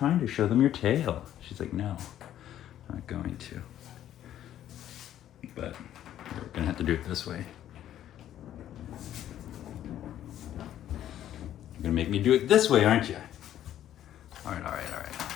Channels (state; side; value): quieter; right; 11.6 dB